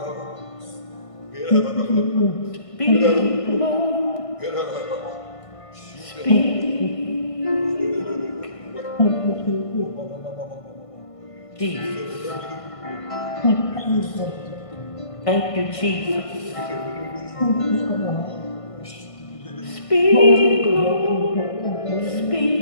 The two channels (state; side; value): late; right; 1.5 ms